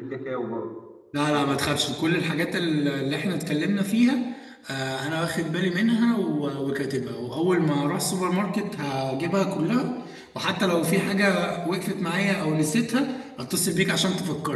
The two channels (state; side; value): identical; both; correlation 1.00